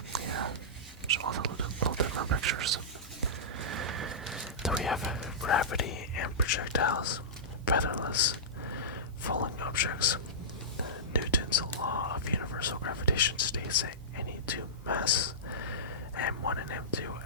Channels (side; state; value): both; normal; correlation -0.18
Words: all the little different pictures. Then we have gravity and projectiles, featherless, falling objects. Newton's law of universal gravitation states that any two masses, m1 and m2,